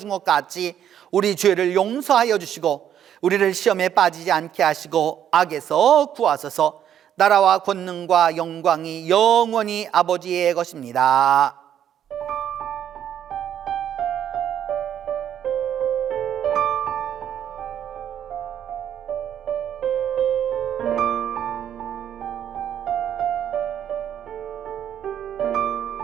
것 같이 우리 죄를 용서하여 주시고 우리를 시험에 빠지지 않게 하시고 악에서 구하소서. 나라와 권능과 영광이 영원히 아버지의 것입니다.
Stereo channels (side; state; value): left; quieter; 9.9 dB